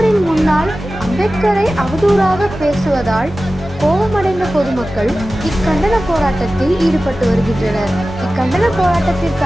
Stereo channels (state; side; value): normal; both; correlation 0.95